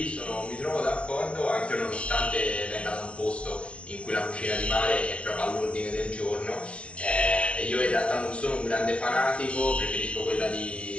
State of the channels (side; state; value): right; late; 0.061 ms